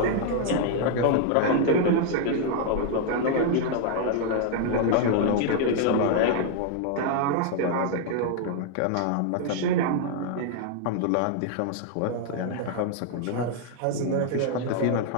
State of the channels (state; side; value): different; both; correlation 0.00